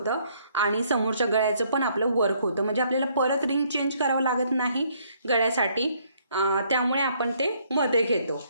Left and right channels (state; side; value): inverted; both; correlation -0.67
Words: आणि समोरच्या गळ्याचं पण आपलं वर्क होतं. म्हणजे आपल्याला परत रिंग चेंज करावं लागत नाही गळ्यासाठी, त्यामुळे आपण ते मध्ये घेतो.